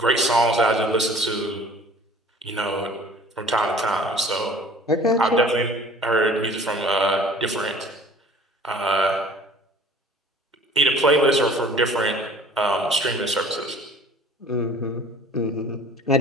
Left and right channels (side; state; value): both; normal; correlation 0.49